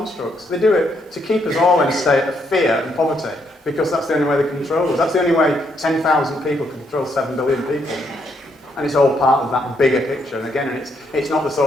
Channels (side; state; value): both; normal; correlation 0.74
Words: They do it to keep us all in a state of fear and poverty, because that's the only way they control us. That's the only way 10,000 people can control 7 billion people. And it's all part of that bigger picture. And again, it's not the